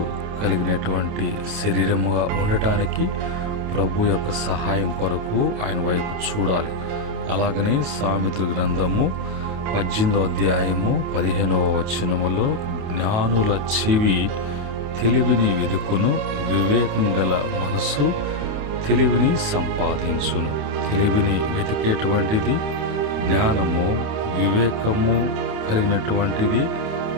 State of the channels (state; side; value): late; left; 28 ms